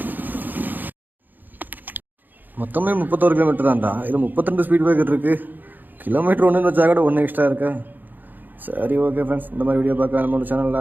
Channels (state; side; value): late; left; 0.087 ms